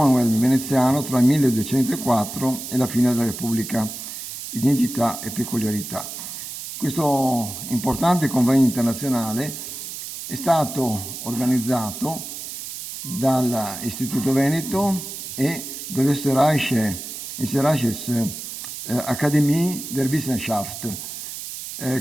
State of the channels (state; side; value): noise; right; hiss, 9 dB below the sound